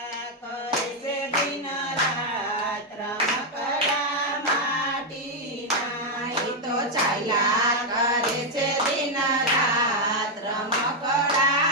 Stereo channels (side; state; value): both; normal; correlation 0.01